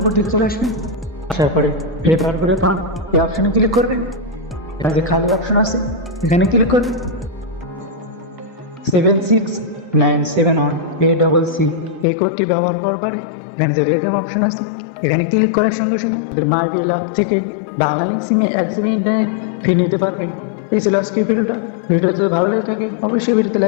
দিকে চলে আসবেন। আসার পরে রেফার করে পান এই অপশনে ক্লিক করবেন। এখানে যে খালি অপশন আছে এখানে ক্লিক করবেন। 76971 এই কোডটি ব্যবহার করার পরে এখানে যে রেডিয়াম অপশন আছে এখানে ক্লিক করার সঙ্গে সঙ্গে মাই বিল অ্যাপ থেকে বাংলা সিমে 1 GB ইন্টারনেট ফ্রি নিতে পারবেন। এই ছিল আজকের ভিডিওটা যদি ভালো লাগে থাকে অবশ্যই ভিডিওতে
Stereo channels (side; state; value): right; drops out; at 12.1 s